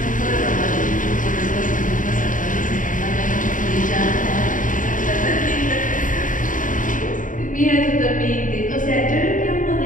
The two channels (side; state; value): right; late; 0.38 ms